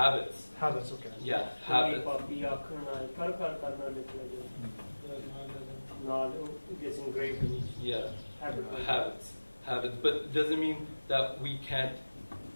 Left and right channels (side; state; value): both; inverted; correlation -1.00